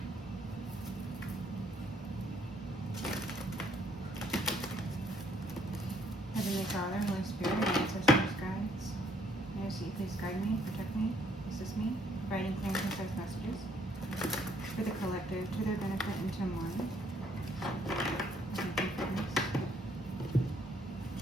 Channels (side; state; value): both; normal; correlation 0.67